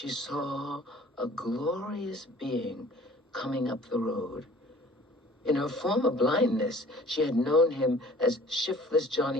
saw a glorious being coming up the road. In her former blindness, she had known him as shiftless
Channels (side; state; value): both; normal; correlation 0.50